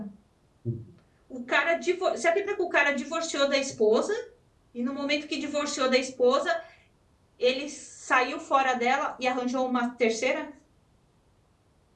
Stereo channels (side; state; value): both; identical; correlation 1.00